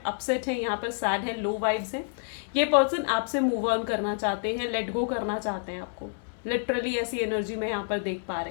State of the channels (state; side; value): silent; right; digital silence